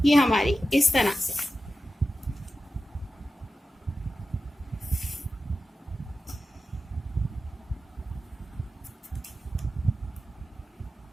ये हमारी इस तरह से।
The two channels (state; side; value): normal; both; correlation 0.92